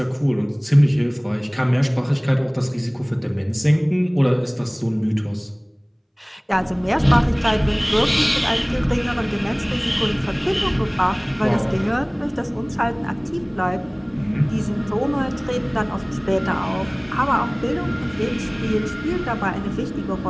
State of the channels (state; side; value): identical; both; correlation 1.00